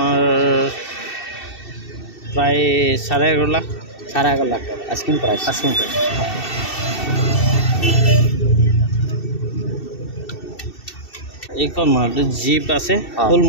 প্ৰায় 11.5 লাখ। 11.5 লাখ টাকা আস্কিং প্ৰাইস। Asking price. এইখন মাৰুতি জিপ আছে ফুল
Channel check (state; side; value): late; right; 2.7 ms